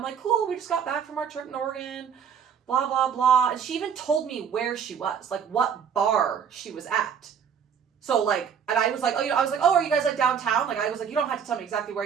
like, cool. We just got back from our trip in Oregon. Blah, blah, blah. And she even told me where she was, like what bar she was at. So like, and I was like, I was like, oh, are you guys like downtown? Like, I was like, you don't have to tell me exactly where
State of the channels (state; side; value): quieter; left; 7.5 dB